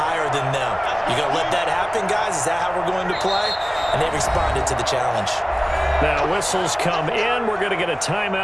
than them. You going to let that happen, guys? Is that how we're going to play? And they responded to the challenge. Now whistles come in. We're going to get a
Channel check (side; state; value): both; identical; correlation 1.00